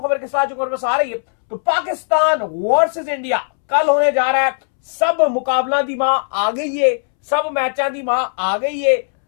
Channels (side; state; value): right; silent; 68 dB below the other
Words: खबर के साथ जो खबर बस आ रही है। तो पाकिस्तान वर्सेस इंडिया कल होने जा रहा है। सब मुकाबला दी मां आ गई है, सब मैचा दी मां आ गई है।